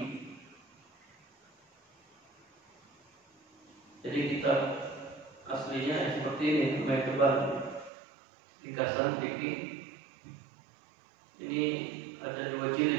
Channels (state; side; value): drops out; left; at 7.9 s